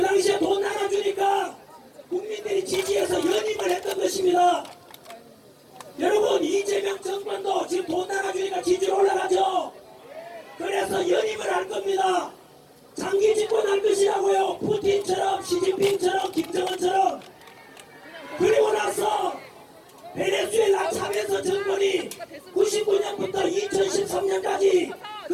당시에 돈 나눠주니까 국민들이 지지해서 연임을 했던 것입니다. 여러분, 이재명 정권도 지금 돈 나눠주니까 지지율 올라가죠. 그래서 연임을 할 겁니다. 장기 집권할 것이라고요. 푸틴처럼 시진핑처럼 김정은처럼. 그리고 나서 베네수엘라 차베스 정권이 99년부터 2013년까지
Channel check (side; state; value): both; identical; correlation 1.00